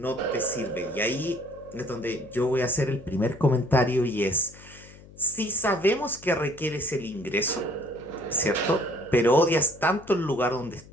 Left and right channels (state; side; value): noise; left; hum, 21 dB below the sound